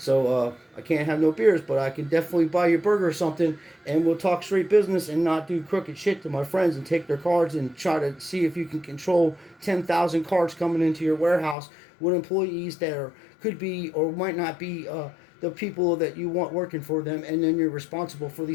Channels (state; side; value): drops out; right; at 11.6 s